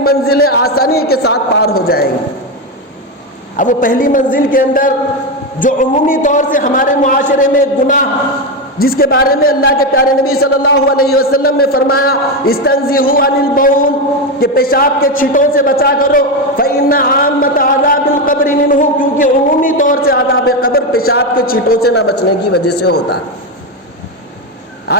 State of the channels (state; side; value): normal; both; correlation 0.11